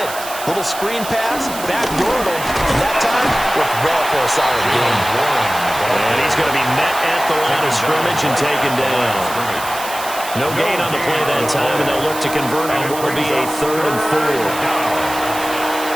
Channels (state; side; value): noise; right; hiss, 10 dB below the sound